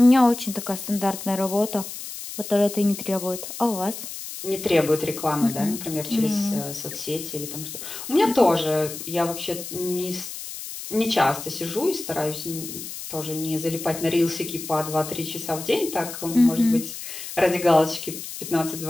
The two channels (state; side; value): noise; left; hiss, 10 dB below the sound